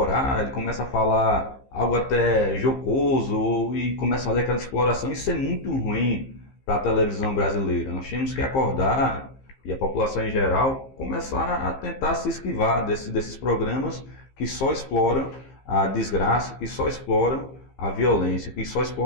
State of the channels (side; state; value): right; late; 15 ms